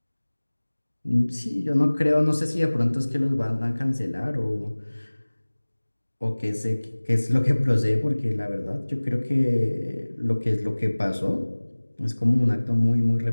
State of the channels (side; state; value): both; inverted; correlation -1.00